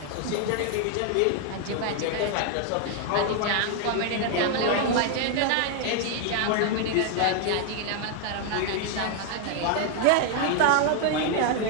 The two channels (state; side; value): different; both; correlation 0.00